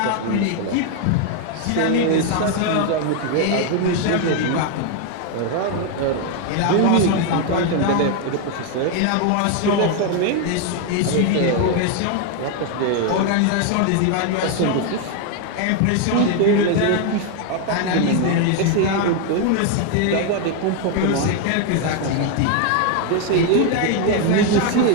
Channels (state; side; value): different; both; correlation 0.01